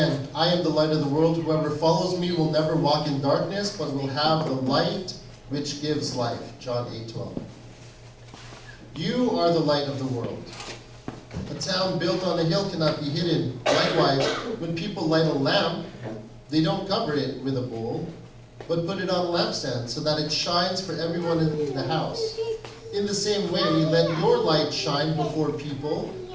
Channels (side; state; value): both; identical; correlation 1.00